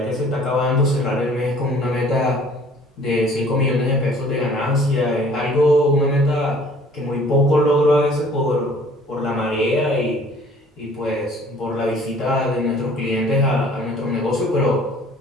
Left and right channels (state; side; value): normal; both; correlation 0.53